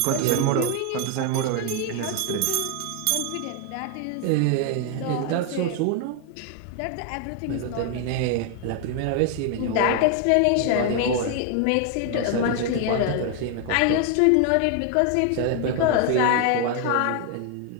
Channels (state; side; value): different; both; correlation 0.00